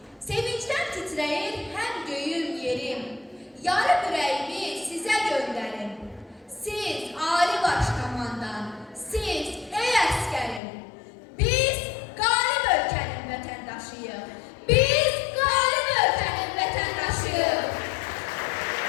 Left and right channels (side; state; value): right; drops out; at 10.6 s